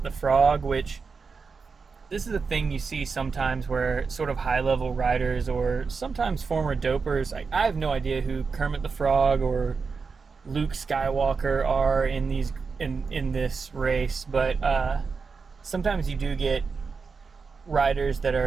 the Frog, which this is a thing you see sometimes where sort of high-level riders or sometimes former dopers, I have no idea who Kermit the Frog or Luke Skywalker are in this race, but sometimes you do get riders that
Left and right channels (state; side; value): quieter; left; 5.0 dB